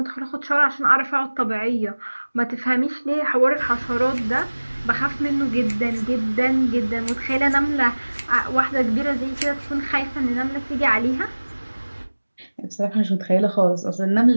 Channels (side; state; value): both; inverted; correlation -1.00